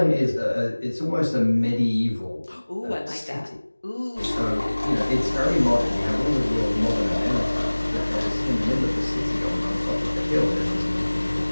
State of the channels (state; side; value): inverted; both; correlation -1.00